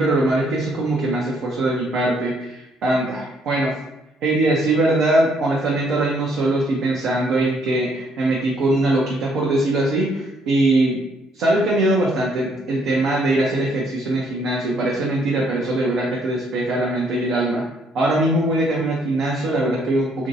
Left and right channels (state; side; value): normal; both; correlation 0.68